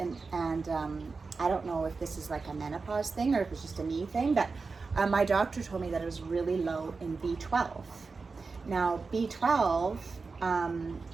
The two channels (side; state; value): left; quieter; 4.4 dB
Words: I don't know if this is like a menopause thing or if it's just a me thing, but my doctor told me that it was really low in B12. Now B12